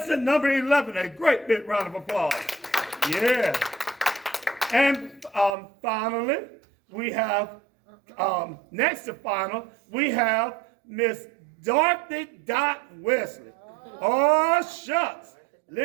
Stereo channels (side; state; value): left; drops out; at 5.6 s